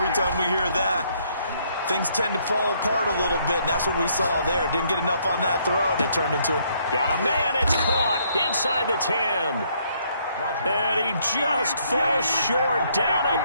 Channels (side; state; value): both; inverted; correlation -0.69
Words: time we hear that, things tend to fall apart a little bit, and that's what we saw there. Didn't get enough on that throw, and it turned into a... Got a man, it's caught inside the 10. And he just falls short down